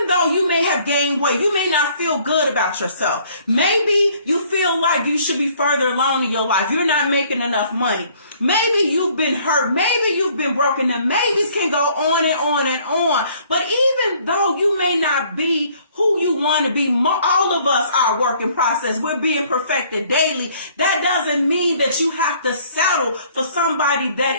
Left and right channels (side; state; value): both; inverted; correlation -0.59